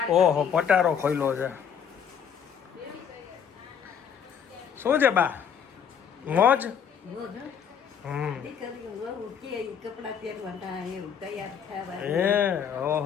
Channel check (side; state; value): right; quieter; 7.7 dB